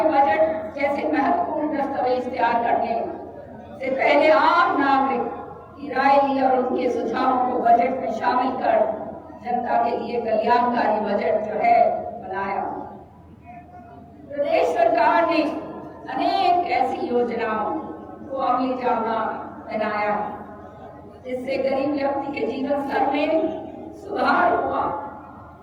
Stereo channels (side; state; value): both; identical; correlation 1.00